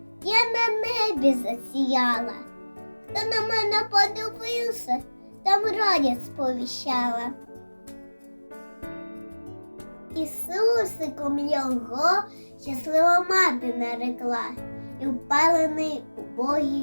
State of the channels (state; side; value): inverted; both; correlation -1.00